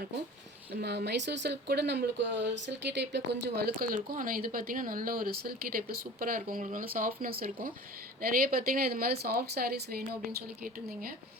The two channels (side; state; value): both; normal; correlation 0.40